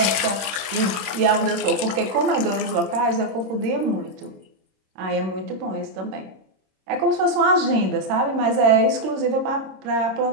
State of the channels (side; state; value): left; late; 26 ms